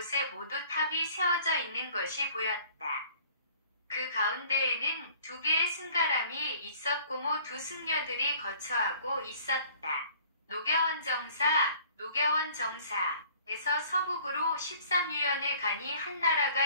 모두 탑이 세워져 있는 것이 보였다. 그 가운데에는 2개의 승가람이 있었고 두 승려들이 거처하고 있었다. 노겨원 정사에서 서북으로 13유연의 간이 한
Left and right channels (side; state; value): both; inverted; correlation -0.53